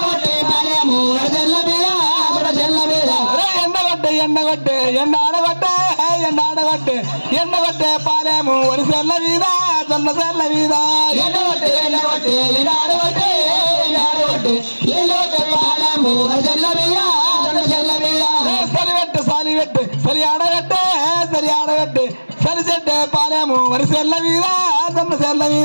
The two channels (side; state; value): both; inverted; correlation -1.00